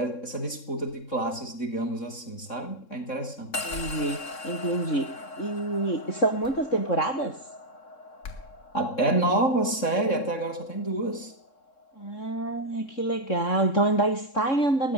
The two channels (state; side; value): late; right; 3.7 ms